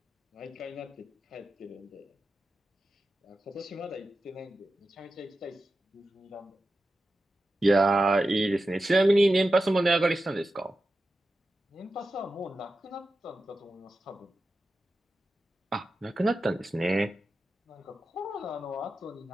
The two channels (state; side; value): normal; both; correlation 0.91